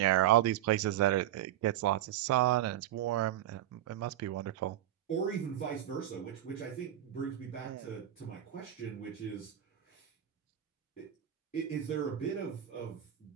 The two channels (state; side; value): quieter; left; 12.0 dB